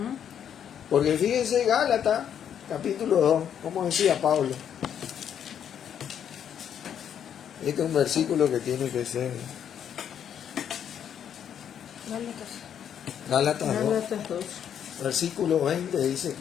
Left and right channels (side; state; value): right; quieter; 8.9 dB